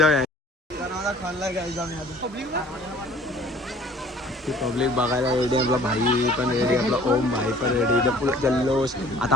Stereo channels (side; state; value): both; normal; correlation 0.52